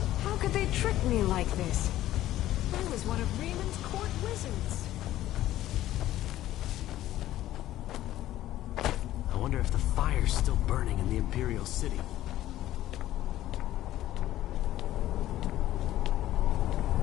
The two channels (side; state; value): right; quieter; 14.0 dB